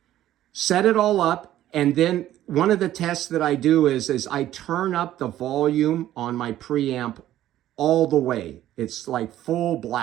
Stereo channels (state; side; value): quieter; left; 13.1 dB